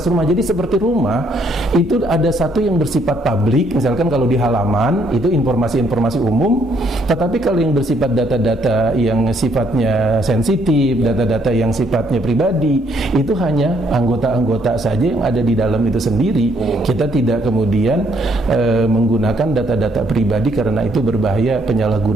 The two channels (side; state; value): both; normal; correlation 0.69